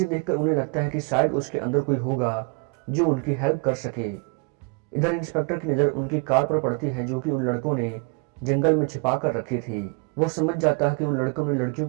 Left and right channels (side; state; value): left; quieter; 32.8 dB